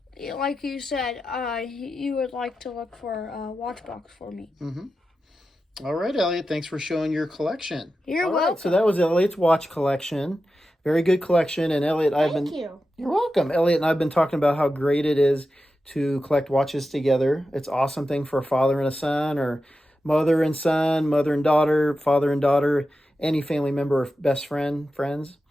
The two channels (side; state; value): both; normal; correlation 0.91